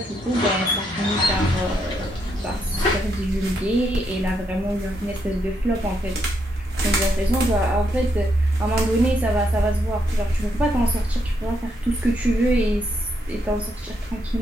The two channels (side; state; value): both; normal; correlation 0.77